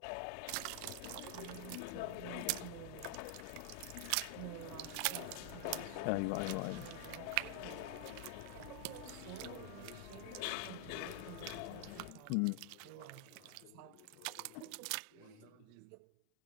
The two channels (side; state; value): both; different; correlation 0.00